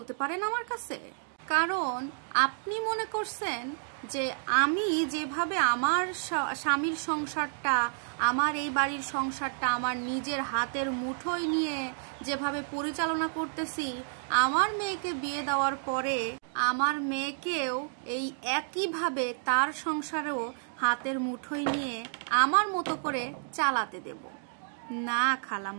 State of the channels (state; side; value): silent; left; digital silence